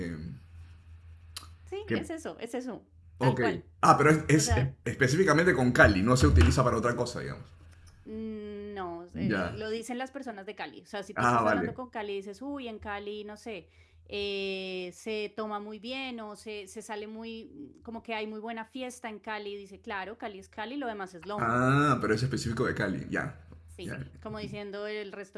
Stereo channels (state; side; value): identical; both; correlation 1.00